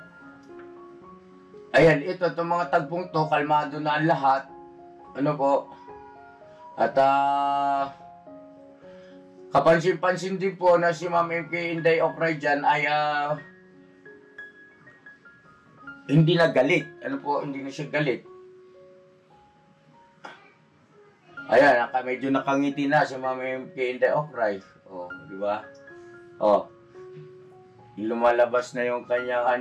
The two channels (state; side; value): identical; both; correlation 1.00